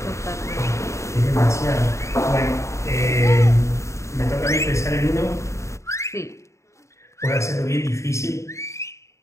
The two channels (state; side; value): late; right; 0.14 ms